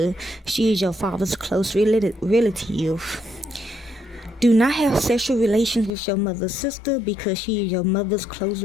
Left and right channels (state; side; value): drops out; right; at 5.9 s